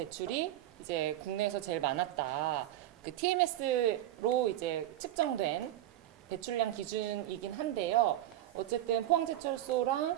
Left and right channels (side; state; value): left; quieter; 13.6 dB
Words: 이제 국내에서 제일 많았다. 그 TMS로 이제 측정된 배출량 기준이긴 한데요. 어쨌든